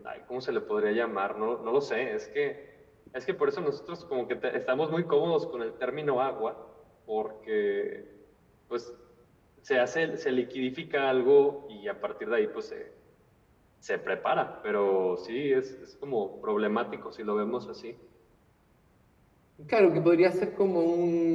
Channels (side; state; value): both; identical; correlation 1.00